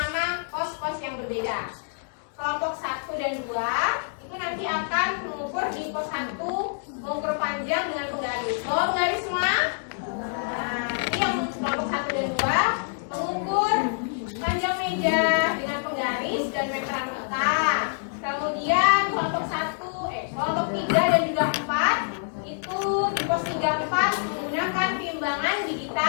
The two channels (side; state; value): right; silent; 61 dB below the other